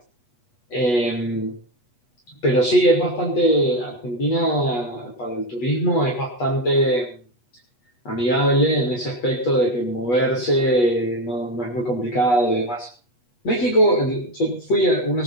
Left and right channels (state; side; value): late; right; 8.2 ms